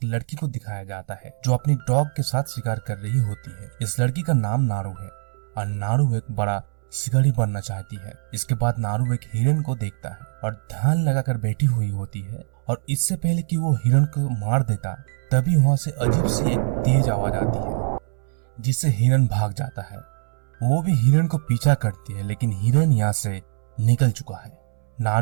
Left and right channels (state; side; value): silent; left; 63 dB below the other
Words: लड़की को दिखाया जाता है जो अपनी डॉग के साथ शिकार कर रही होती है। इस लड़की का नाम नारू है और नारू एक बड़ा शिकारी बनना चाहती है। इसके बाद नारू एक हिरन को देखता है और ध्यान लगाकर बैठी हुई होती है, और इससे पहले कि वो हिरन को मार देता तभी वहां से अजीब सी एक तेज आवाज आती है जिससे हिरन भाग जाता है। वो भी हिरन को पीछा करती है, लेकिन हिरन यहाँ से निकल चुका है।